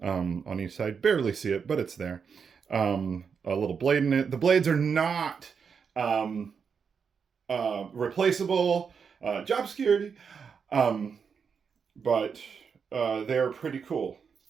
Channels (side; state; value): left; quieter; 6.2 dB